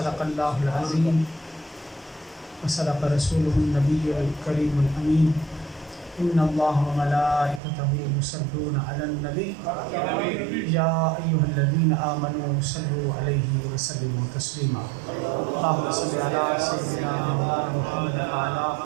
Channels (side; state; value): left; drops out; at 7.6 s